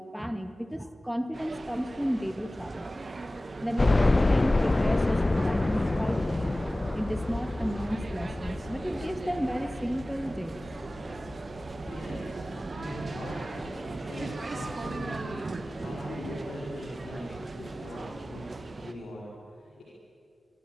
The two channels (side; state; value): both; normal; correlation 0.97